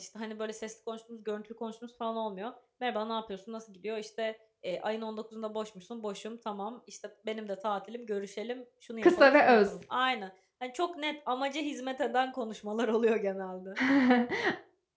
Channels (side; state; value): both; identical; correlation 1.00